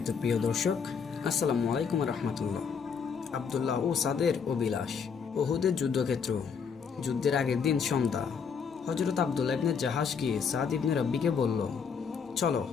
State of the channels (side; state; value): right; quieter; 6.3 dB